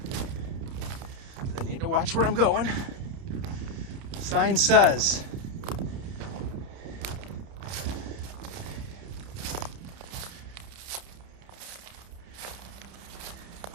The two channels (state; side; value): late; left; 30 ms